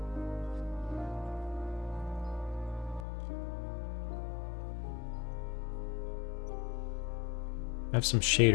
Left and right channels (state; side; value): drops out; right; at 3.1 s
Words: I have some